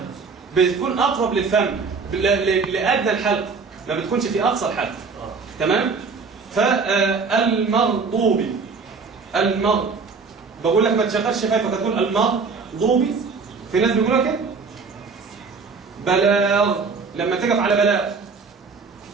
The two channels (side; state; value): left; quieter; 4.8 dB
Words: بتكون اقرب للفم لادنى الحلق، ما بتكونش في اقصى الحلق. تمام؟ فالمغضوب، بقول لك ما تشغلش شفايفك، هتقول المغضوب. في ناس بيقولوا كده. بلاغ، لما تقف على